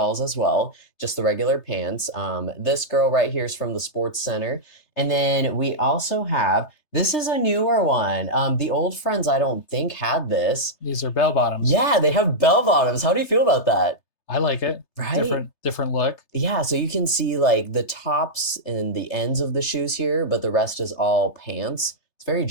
as well, just the regular pants. This girl right here is from the Sports Center. And then we also have, this is a newer one. The old friends, I don't think had this. These are bell bottoms. Yeah, they have bell bottoms. How do you feel about that? I like it. Right? Different look. Yeah, so you can see like the tops and the ends of the shoes here, but the rest is all pants. It's very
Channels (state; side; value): late; right; 3.3 ms